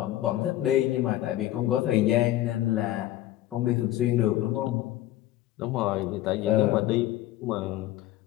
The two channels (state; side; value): quieter; right; 14.5 dB